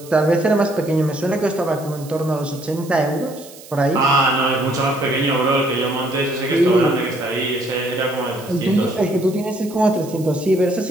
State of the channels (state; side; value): noise; right; hiss, 19 dB below the sound